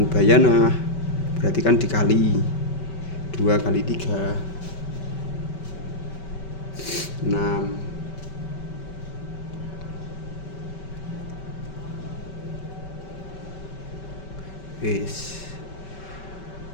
berarti kan dikali 2 kali 3 6. Wis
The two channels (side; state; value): right; late; 5.2 ms